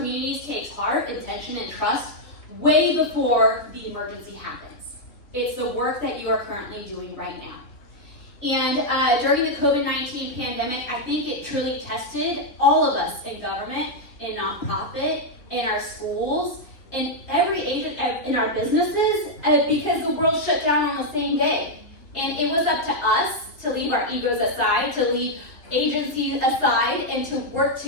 takes heart, intention, and trust way before the emergency happens. It's the work that you are currently doing right now. And during the COVID-19 pandemic, I think it truly tested all of us in government, in nonprofit, in our schools, in every agent, in our businesses, because the world shut down on the same day. And it was up to us to leave our egos aside, to leave agencies aside, and to work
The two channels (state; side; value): late; right; 3.0 ms